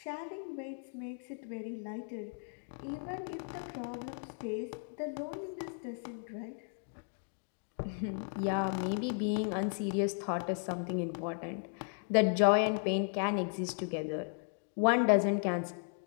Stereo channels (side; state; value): right; silent; 54 dB below the other